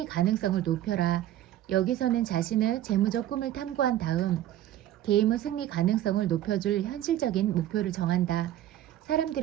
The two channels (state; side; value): quieter; left; 12.7 dB